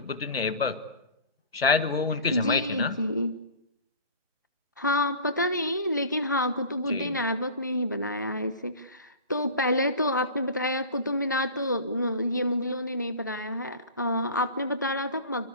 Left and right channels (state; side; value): inverted; both; correlation -0.38